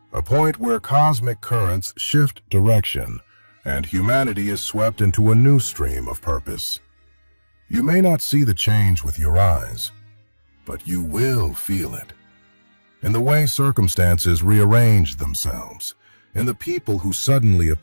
a point where cosmic currents shift direction and humanity is swept into a new stream of purpose. You may not see the change with your eyes, but you will feel it. In the way circumstances rearrange themselves, in the people who suddenly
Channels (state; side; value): inverted; both; correlation -1.00